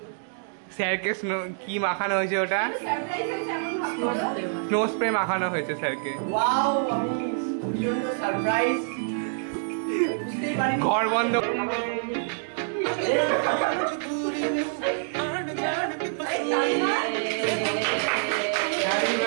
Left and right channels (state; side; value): silent; left; digital silence